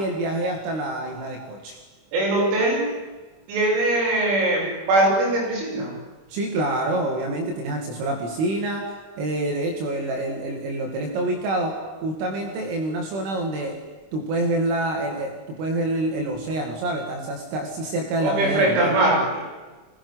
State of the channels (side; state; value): left; late; 26 ms